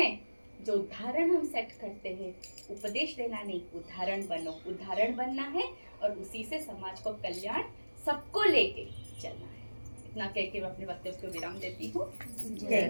जो उदाहरण हम सेट करते हैं, उपदेश देना नहीं, उदाहरण बनो। उदाहरण बनना है और उसी से समाज को कल्याण सबको लेके चलना है। इतना कह के मैं अपने वक्तव्य को विराम देती हूँ।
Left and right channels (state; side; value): inverted; both; correlation -1.00